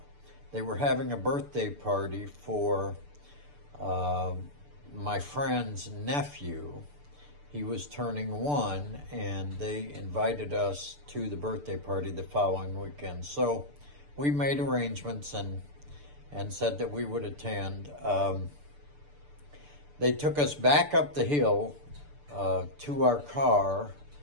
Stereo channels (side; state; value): left; late; 6.8 ms